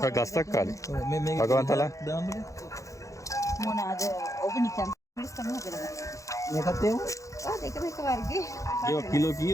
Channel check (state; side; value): late; right; 0.15 ms